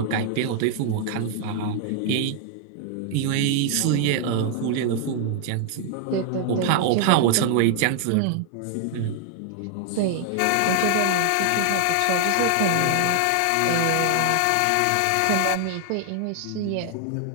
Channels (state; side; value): different; both; correlation 0.00